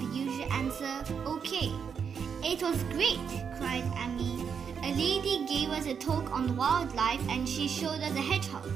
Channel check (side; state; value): left; quieter; 6.8 dB